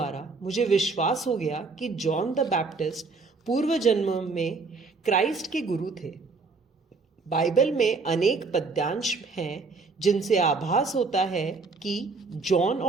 मुझे विश्वास हो गया कि जॉन द बैप्टिस्ट पूर्व जन्म में क्राइस्ट के गुरु थे। बाइबल में अनेक पद्यांश हैं जिनसे आभास होता है कि जॉन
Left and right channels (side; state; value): left; quieter; 4.2 dB